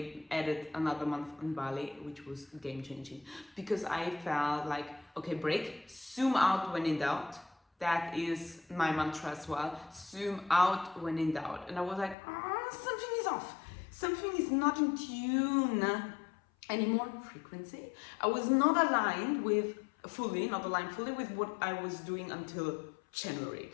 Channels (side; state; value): right; drops out; at 12.2 s